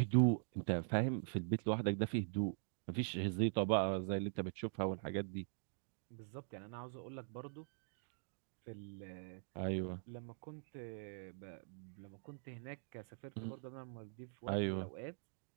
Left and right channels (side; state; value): left; silent; digital silence